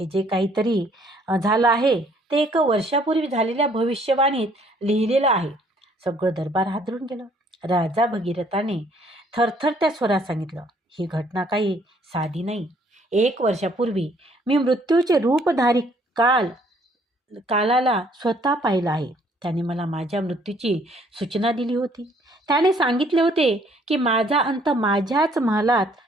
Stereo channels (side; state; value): both; normal; correlation 0.63